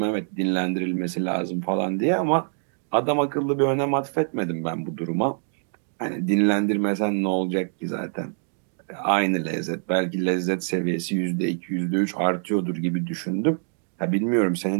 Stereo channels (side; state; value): left; silent; 62 dB below the other